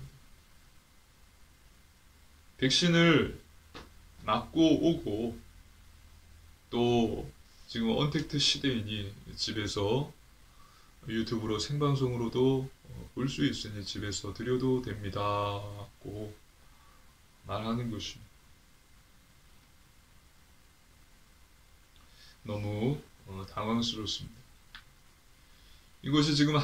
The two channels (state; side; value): identical; both; correlation 1.00